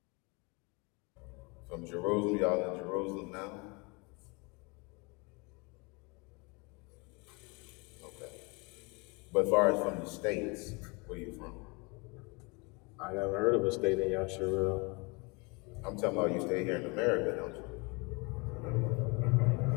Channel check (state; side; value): quieter; right; 28.7 dB